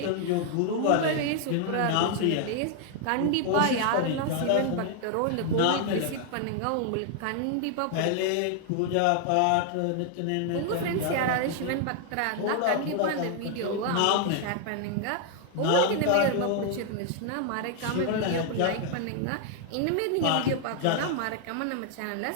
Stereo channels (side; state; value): both; different; correlation 0.00